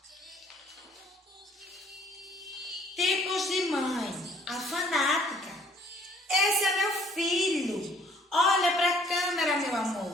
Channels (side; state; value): both; normal; correlation 0.58